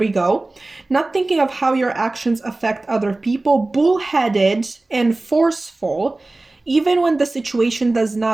go. Not thinking of how your actions affect other people. Bullheaded and forceful, even when the situation does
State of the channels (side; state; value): left; quieter; 3.0 dB